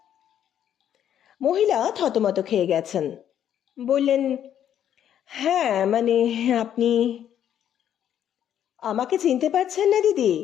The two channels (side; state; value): right; quieter; 10.1 dB